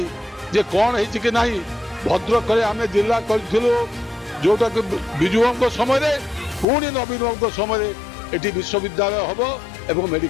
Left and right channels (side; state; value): right; drops out; at 6.7 s